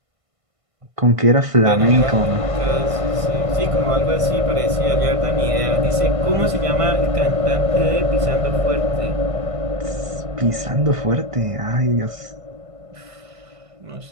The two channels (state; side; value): late; left; 1.5 ms